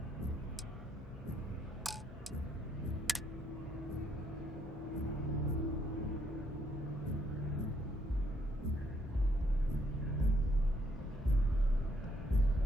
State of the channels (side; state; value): both; normal; correlation 0.72